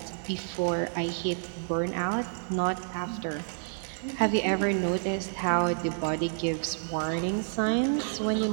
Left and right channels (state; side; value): silent; left; 58 dB below the other